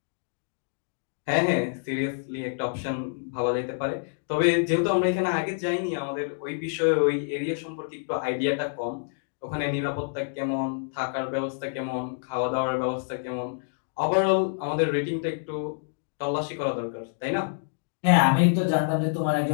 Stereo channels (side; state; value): right; silent; digital silence